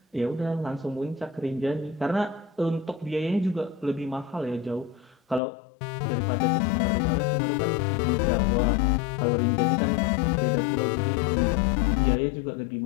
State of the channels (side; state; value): right; drops out; at 5.4 s